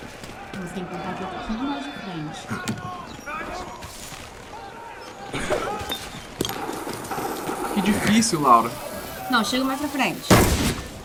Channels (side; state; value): both; identical; correlation 1.00